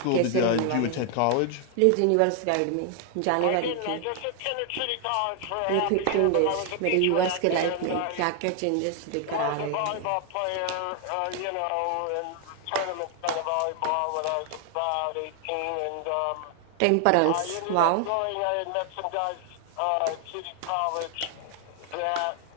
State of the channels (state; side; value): different; both; correlation 0.00